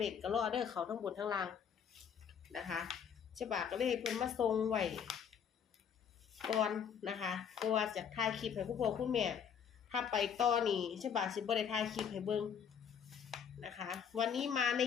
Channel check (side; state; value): right; quieter; 7.6 dB